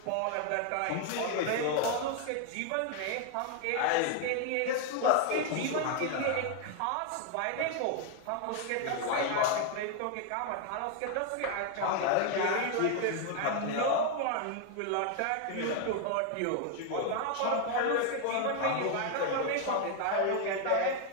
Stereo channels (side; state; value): both; different; correlation 0.01